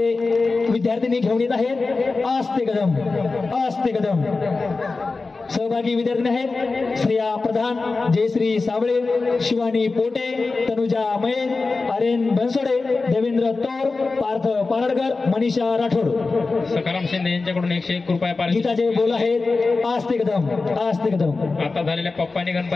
विद्यार्थ्यांनी घेऊन येत आहेत आस्ते कदम आस्ते कदम. सहभागी विद्यार्थी आहेत श्रेया प्रधान, जयश्री साबळे, शिवानी पोटे, तनुजा मयेन, आर्यन बनसोडे, देवेंद्र तोर, पार्थ पारडकर, मनीषा राठोड. सकाराम शिंदे यांच्याकडून 101 रुपये पारितोषिक. गीताचे बोल आहेत आस्ते कदम आस्ते कदम. आता झालेल्या पप्पानी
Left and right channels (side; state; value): right; quieter; 3.9 dB